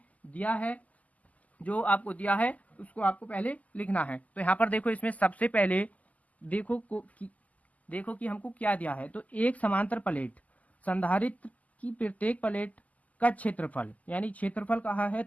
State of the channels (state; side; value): late; right; 0.075 ms